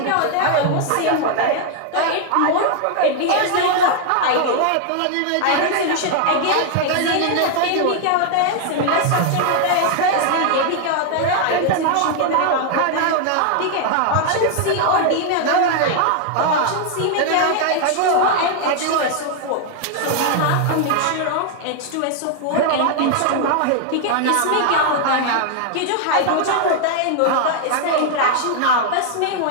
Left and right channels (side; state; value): both; different; correlation 0.00